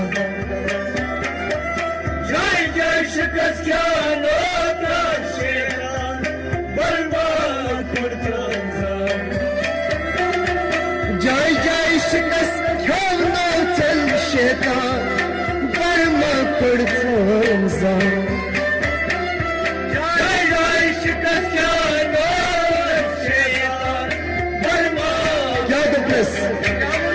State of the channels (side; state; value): both; identical; correlation 1.00